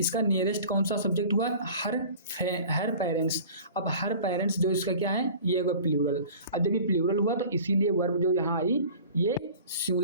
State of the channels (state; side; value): inverted; both; correlation -0.43